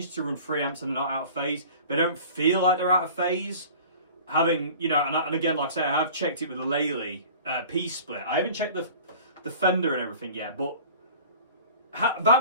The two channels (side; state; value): both; inverted; correlation -0.43